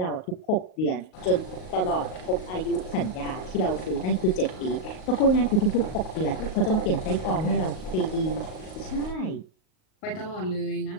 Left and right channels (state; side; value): late; right; 38 ms